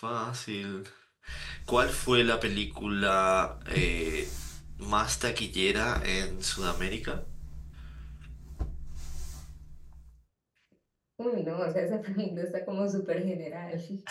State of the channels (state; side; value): identical; both; correlation 1.00